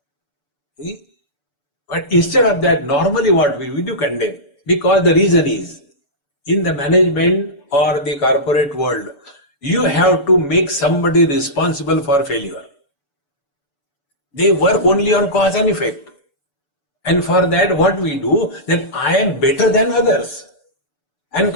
See? But instead of that, normally what we do condemn, because the reason is, in the management or the corporate world, you have to make somebody responsible for failure. They work only on cause and effect. And for that, what we do, that I am better than others. And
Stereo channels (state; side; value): late; right; 7.0 ms